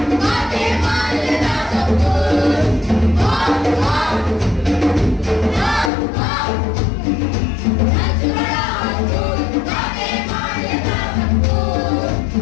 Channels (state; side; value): drops out; right; at 5.9 s